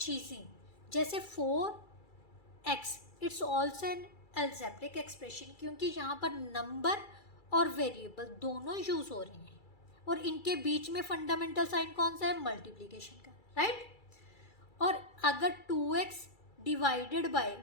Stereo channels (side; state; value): right; late; 2.3 ms